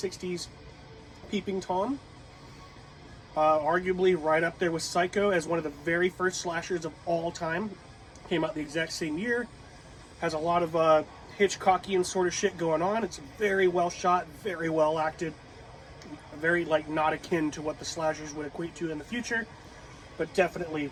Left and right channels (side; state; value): both; identical; correlation 1.00